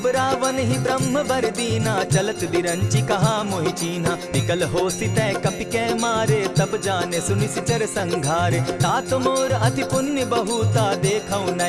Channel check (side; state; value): both; identical; correlation 1.00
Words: रावण ही ब्रह्म बर दीना, चलत बिरंची कहा मोहि चीन्हा। निकल हो सितै कपि कै मारे, तब जाने सुनि निशिचर संघारे। तात मोर अति पुण्य बहुता, देखौ